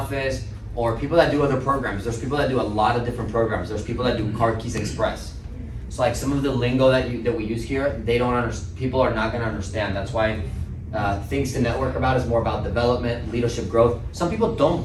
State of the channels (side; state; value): both; identical; correlation 1.00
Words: or people that do other programs. There's people that do a lot of different programs. There's people that do Card Keys Express. So like some of the lingo that we use here, people are not gonna understand. That's why things to network about is more about development, leadership, growth. Some people